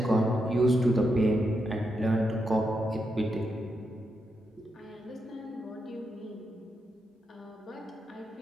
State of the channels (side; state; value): both; normal; correlation 0.84